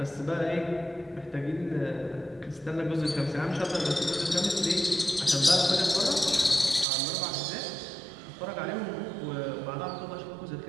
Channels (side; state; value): left; drops out; at 6.9 s